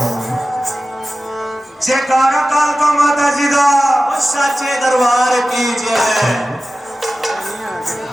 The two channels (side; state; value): both; normal; correlation 0.94